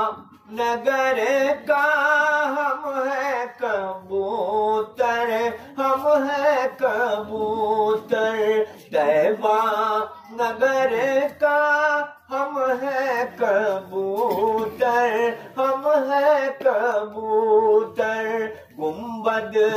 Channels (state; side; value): identical; both; correlation 1.00